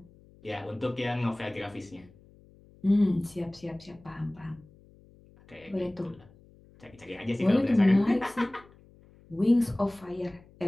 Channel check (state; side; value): noise; left; hum, 26 dB below the sound